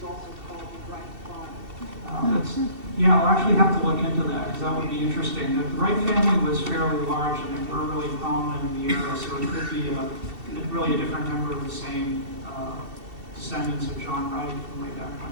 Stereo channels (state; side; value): late; left; 2.7 ms